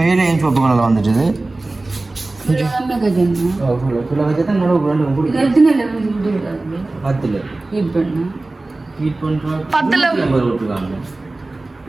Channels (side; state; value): left; quieter; 3.1 dB